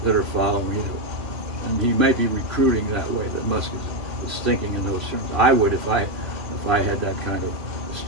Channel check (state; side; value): late; left; 2.8 ms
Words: that are following you. And he may be recruiting that way, that Musk is thinking in those terms. I would if I had that kind of